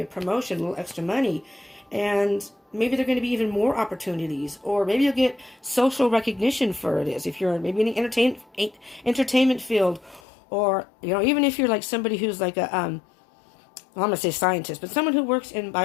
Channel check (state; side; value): drops out; right; at 10.2 s